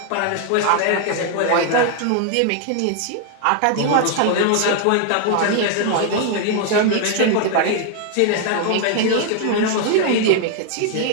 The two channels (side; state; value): both; different; correlation 0.00